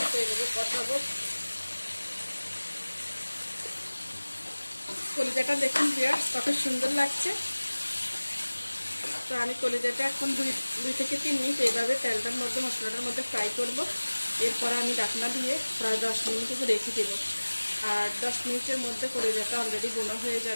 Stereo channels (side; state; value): both; inverted; correlation -1.00